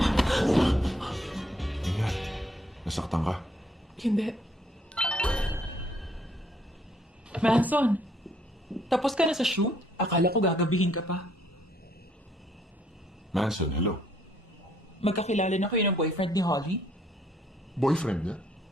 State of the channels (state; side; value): normal; both; correlation 0.67